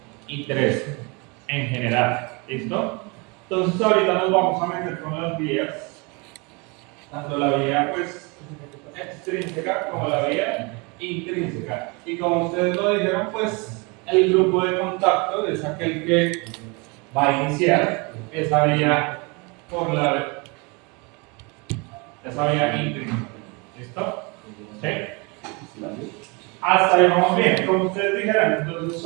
y 3 en general. ¿Listo? Entonces ahorita nos vamos a meter con las vías, tanto la vía pues, extrínseca como la vía intrínseca. Y como ustedes lo dijeron, pues el grupo de contacto es aquel que va a iniciar esa vía por esa vía intrínseca. ¿Listo? ¿Sí? Hasta ahí vamos bien. Como ustedes dijeron, entonces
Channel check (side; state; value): left; quieter; 29.3 dB